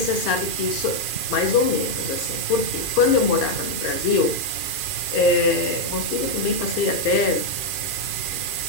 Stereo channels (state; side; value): late; right; 2.4 ms